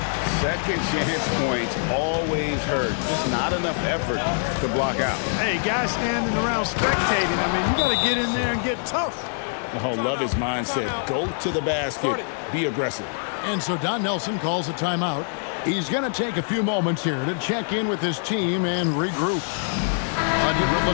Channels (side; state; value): right; silent; digital silence